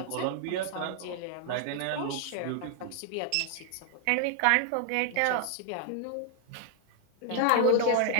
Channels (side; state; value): both; different; correlation 0.00